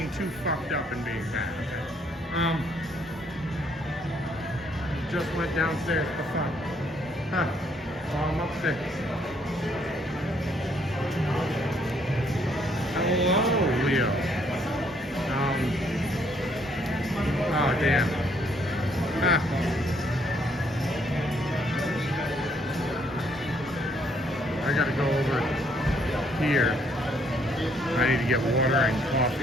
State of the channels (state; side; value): normal; both; correlation 0.68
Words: too fucked up and being bad. Just went downstairs for fun. Huh. Oh, I'm upstairs. Hello, Leo. Oh damn. I gotta go over here. I need to get water and